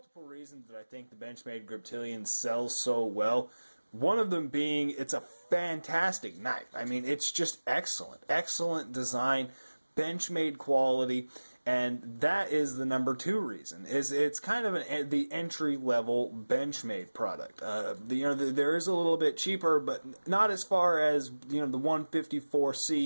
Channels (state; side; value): inverted; both; correlation -1.00